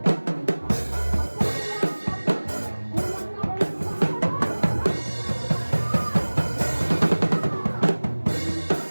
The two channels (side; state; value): both; inverted; correlation -1.00